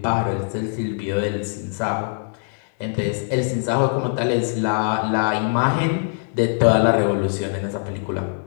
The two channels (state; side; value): silent; right; digital silence